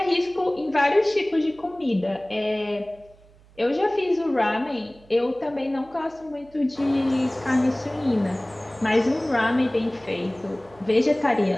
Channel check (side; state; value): right; noise; hum, 27 dB below the sound